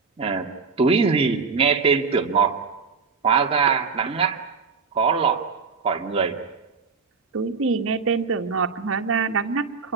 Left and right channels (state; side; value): quieter; left; 5.1 dB